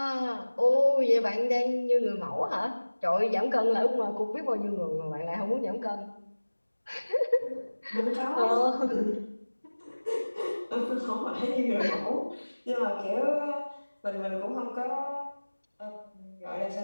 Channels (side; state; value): both; inverted; correlation -1.00